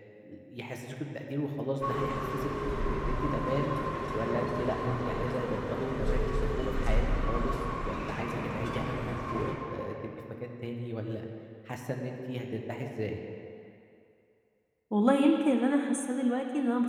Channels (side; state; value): both; identical; correlation 1.00